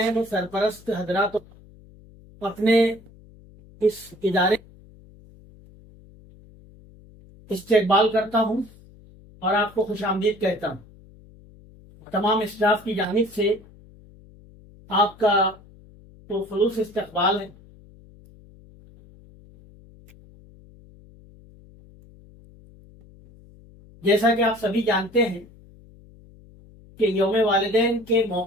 और सरपरस्त हजरात अपने इस इदारे इस्तकबाल करता हूं और आपको खुशामदीद कहता हूं। तमाम स्टाफ की जानिब से आपका तो खुलूस इस्तकबाल है। जैसा कि आप सभी जानते हैं कि यौम वालिदैन के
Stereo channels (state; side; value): noise; left; hum, 24 dB below the sound